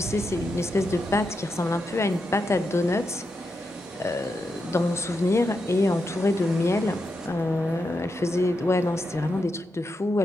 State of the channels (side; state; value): both; normal; correlation 0.85